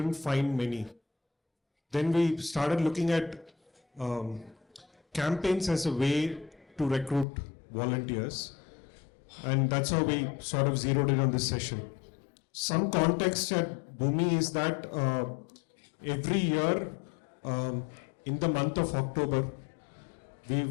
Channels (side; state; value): right; drops out; at 7.2 s